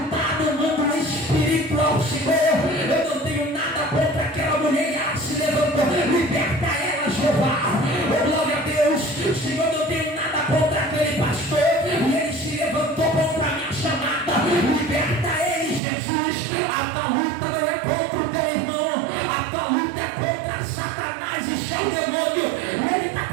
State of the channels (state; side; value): drops out; left; at 15.8 s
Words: no mundo espiritual. Senhor, eu não tenho nada contra aquela mulher, ela se levantou, liberta ela, Jeová. Oh glória a Deus. Senhor, eu não tenho nada contra aquele pastor e ele se levantou contra a minha chamada, liberta ele, Jesus. A tua luta não é contra o teu irmão, a tua luta é contra Satanás e seu demônio. E ele está